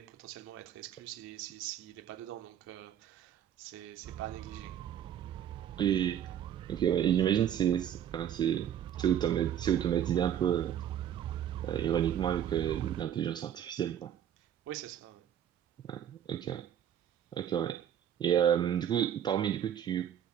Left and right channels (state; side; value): quieter; left; 10.0 dB